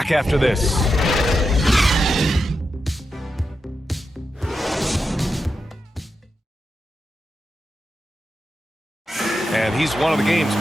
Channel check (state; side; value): normal; both; correlation 0.88